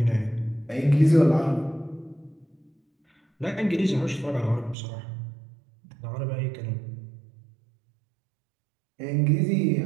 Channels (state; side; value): drops out; left; at 4.8 s